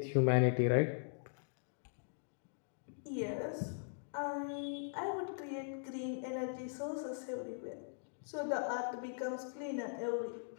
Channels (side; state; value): right; silent; digital silence